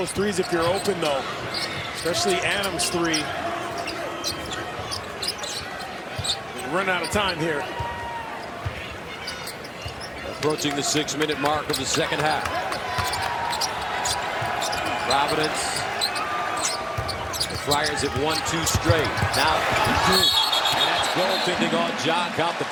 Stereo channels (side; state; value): both; identical; correlation 1.00